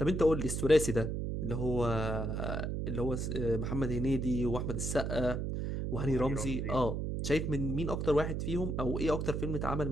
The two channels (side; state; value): right; noise; hum, 2 dB below the sound